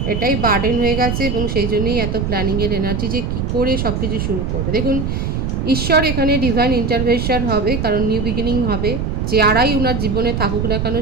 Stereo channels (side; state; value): right; noise; rumble, 1 dB below the sound